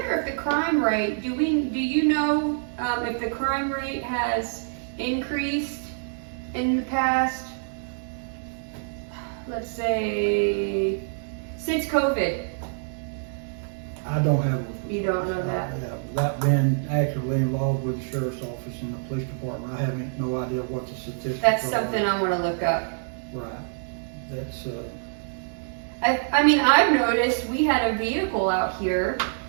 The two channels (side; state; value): left; silent; 61 dB below the other